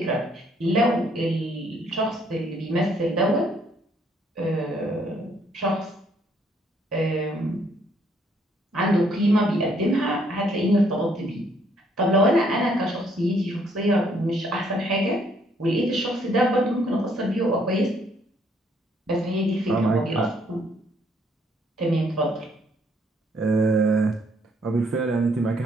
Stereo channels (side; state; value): both; normal; correlation 0.67